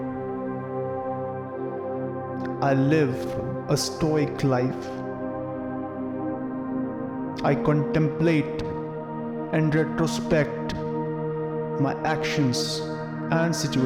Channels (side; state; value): both; identical; correlation 1.00